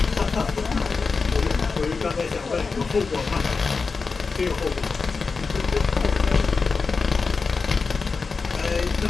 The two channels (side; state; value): right; quieter; 4.6 dB